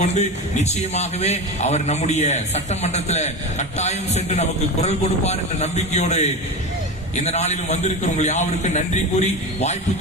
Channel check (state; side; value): normal; both; correlation 0.24